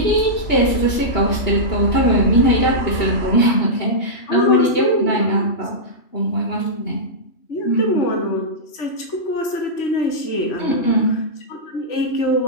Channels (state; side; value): late; right; 3.1 ms